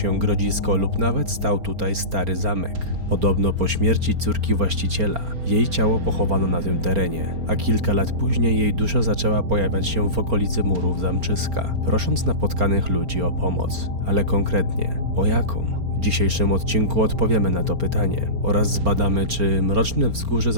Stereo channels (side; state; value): left; late; 4.3 ms